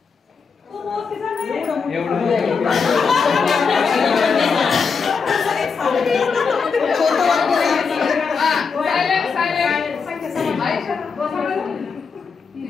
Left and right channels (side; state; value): right; quieter; 5.5 dB